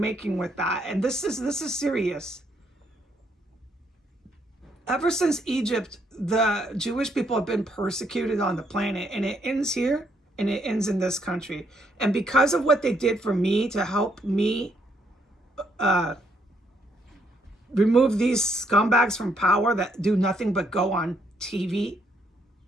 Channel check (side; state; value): both; normal; correlation 0.72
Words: with that, and this is serious. Ever since Egypt, the Jewish people have been persecuted on the planet, and it ends here, and it ends in this country. And because of what they did for me to help me remove these scumbags from power that do nothing but go on TV,